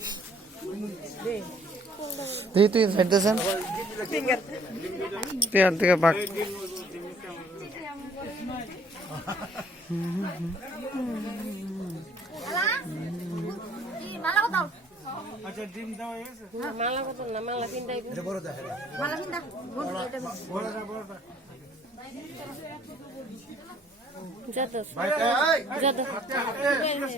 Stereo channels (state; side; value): normal; both; correlation 0.59